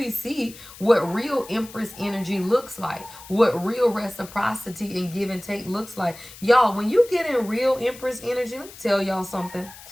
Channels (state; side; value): noise; left; hiss, 18 dB below the sound